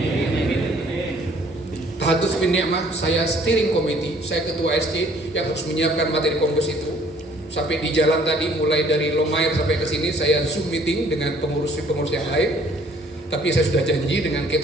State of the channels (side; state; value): both; normal; correlation 0.59